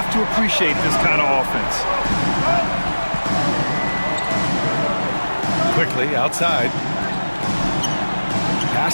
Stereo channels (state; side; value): inverted; both; correlation -1.00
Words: to appreciate this kind of offense. Quickly outside.